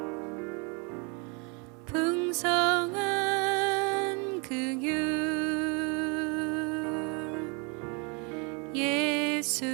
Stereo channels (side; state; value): left; quieter; 32.7 dB